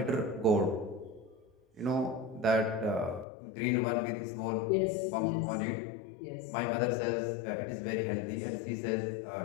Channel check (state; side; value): drops out; right; at 3.2 s